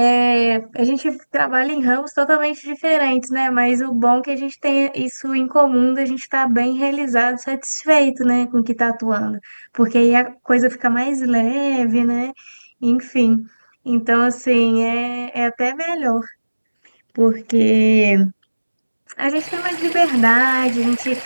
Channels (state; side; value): inverted; both; correlation -1.00